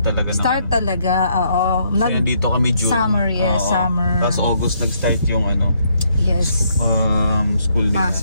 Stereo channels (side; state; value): both; inverted; correlation -0.72